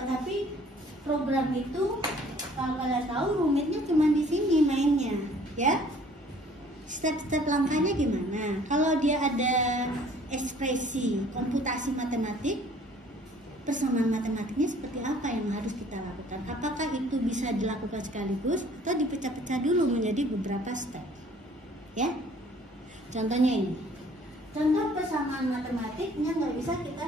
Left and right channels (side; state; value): both; normal; correlation 0.55